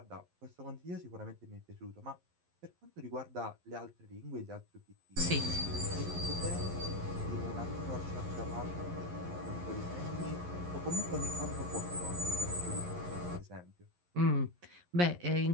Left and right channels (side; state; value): left; late; 11 ms